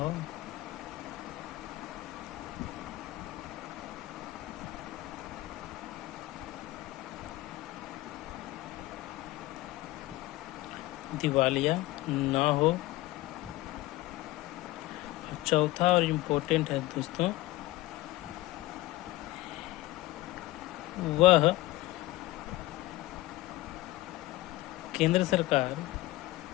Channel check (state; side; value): quieter; right; 18.1 dB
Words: दिवालिया ना हो। चौथा और इम्पोर्टेंट है दोस्तों, वह केंद्र सरकार